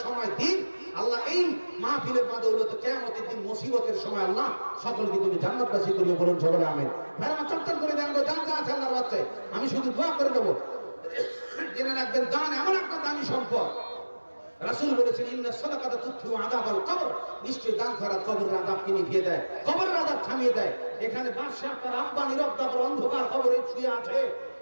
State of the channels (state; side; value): inverted; both; correlation -1.00